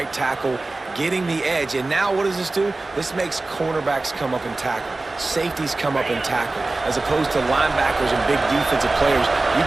tackle, getting the edge. And now what does this do? This makes cornerbacks come up and tackle. Safeties come up and tackle. As opposed to linebackers and big defensive players, you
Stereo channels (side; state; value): left; quieter; 3.2 dB